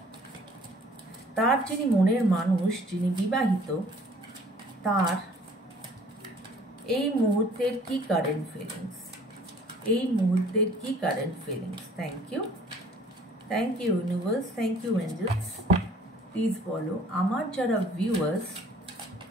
তার যিনি মনের মানুষ, যিনি বিবাহিত, তার এই মুহূর্তের কি কারেন্ট ফিলিংস, এই মুহূর্তের কি current feelings. Thank you universe, thank you angels. Please বলো, আমার যারা ভিউয়ার্স,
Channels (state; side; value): normal; both; correlation 0.55